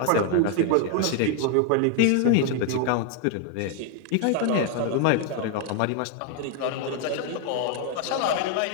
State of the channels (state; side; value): different; both; correlation 0.00